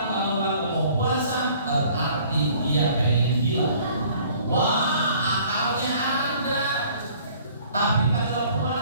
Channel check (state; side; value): inverted; both; correlation -0.55